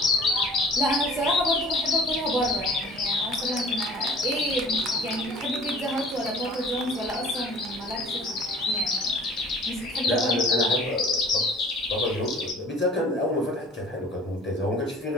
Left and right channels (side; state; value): both; normal; correlation 0.47